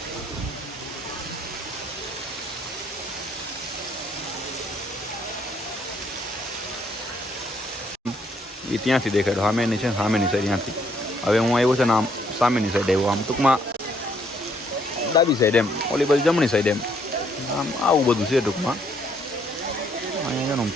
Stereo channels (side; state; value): both; normal; correlation 0.68